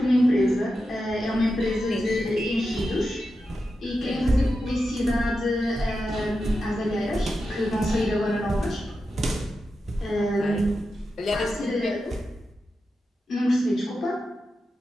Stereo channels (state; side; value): normal; both; correlation 0.90